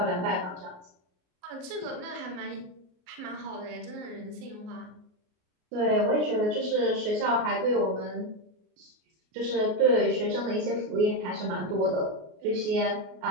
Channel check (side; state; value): left; late; 33 ms